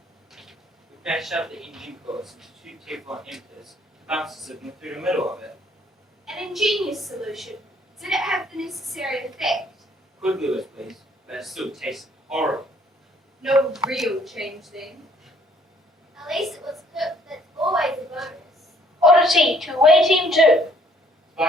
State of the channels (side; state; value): both; normal; correlation 0.62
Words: We patched up the engine course into 2 Teflon emitters, bouncers sitting through the middle of it. An ingenious solution. Did it have the necessary effect? Could Lewis please, but it still tasted horrible. No real change then. At least it was cooked. That's always a bonus. Oddity to away team 2.